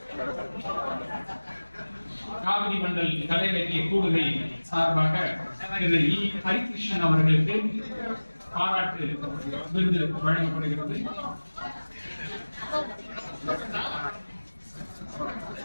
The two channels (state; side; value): inverted; both; correlation -1.00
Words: காவிரி மண்டல் கலை இலக்கிய கூடுகை சார்பாக திரு இ. ஹரிகிருஷ்ணன் அவர்களுக்கு பாராட்டு விருது வழங்கப்படுகிறது.